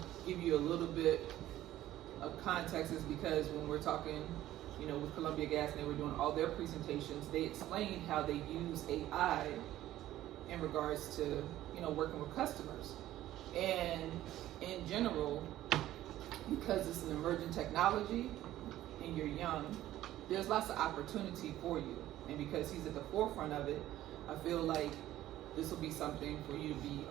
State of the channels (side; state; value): left; quieter; 14.0 dB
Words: give you a little bit of context is because when we're talking, you know, with Columbia Gas and they were doing all their presentations, they explained how they use AI in regards to, you know, working with customers. And in general, because it's an emerging technology and you're young, there's lots of opportunity for you. And because he's at the forefront of it, I feel like this will be something for you to be